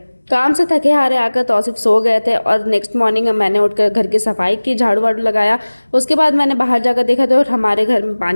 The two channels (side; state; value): both; inverted; correlation -1.00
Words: काम से थके हारे आकर तौसीफ सो गए थे और नेक्स्ट मॉर्निंग मैंने उठकर घर की सफाई की, झाड़ू वाड़ू लगाया। उसके बाद मैंने बाहर जाकर देखा तो हमारे घर में